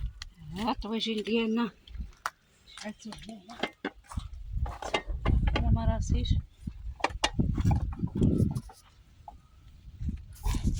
الطواجين ديالنا شعلتو هنايا. انا ما راسيش.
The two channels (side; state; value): both; identical; correlation 1.00